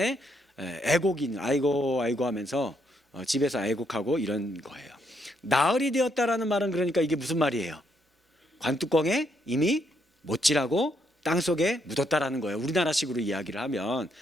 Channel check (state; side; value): normal; both; correlation 0.75